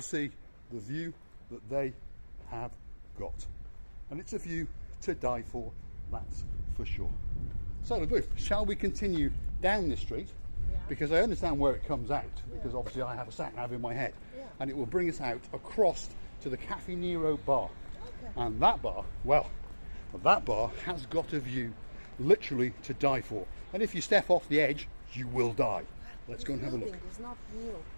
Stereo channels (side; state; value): both; inverted; correlation -1.00